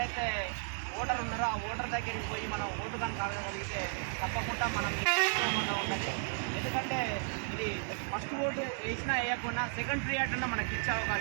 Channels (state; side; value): silent; left; 55 dB below the other